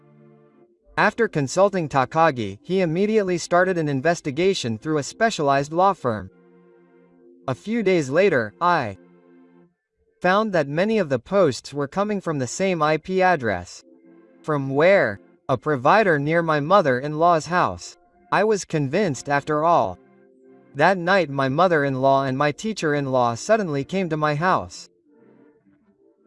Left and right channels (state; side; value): identical; both; correlation 1.00